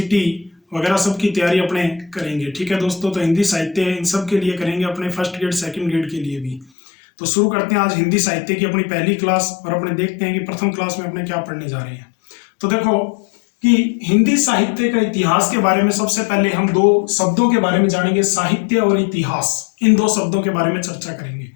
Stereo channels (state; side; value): drops out; right; at 6.7 s